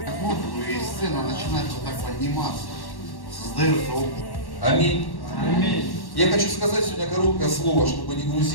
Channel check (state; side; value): late; right; 1.1 ms